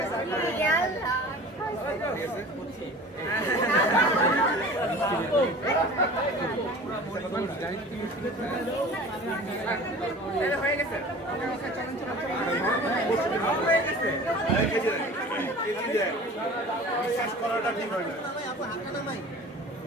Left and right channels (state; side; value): normal; both; correlation 0.41